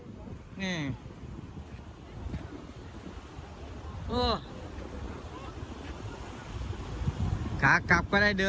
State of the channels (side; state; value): both; identical; correlation 1.00